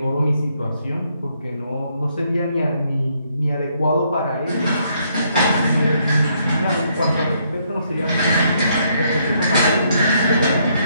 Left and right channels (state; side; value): inverted; both; correlation -0.72